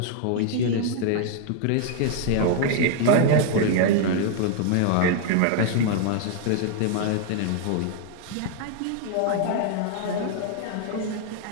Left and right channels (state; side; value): different; both; correlation 0.00